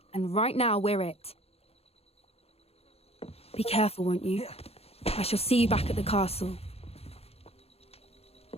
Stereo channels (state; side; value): late; right; 0.29 ms